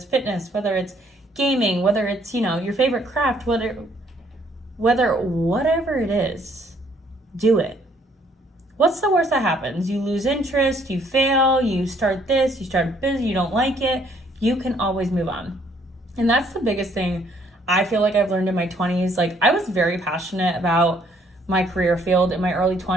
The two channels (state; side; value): normal; both; correlation 0.65